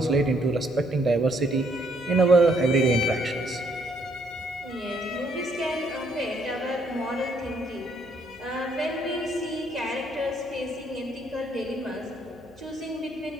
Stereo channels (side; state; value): left; noise; hum, 26 dB below the sound